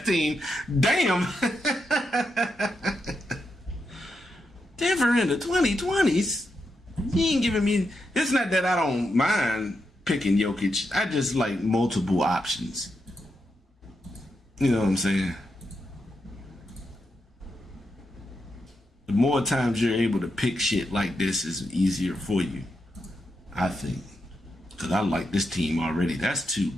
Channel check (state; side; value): normal; both; correlation 0.84